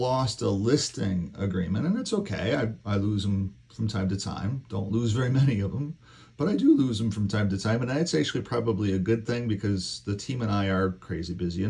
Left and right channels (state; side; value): identical; both; correlation 1.00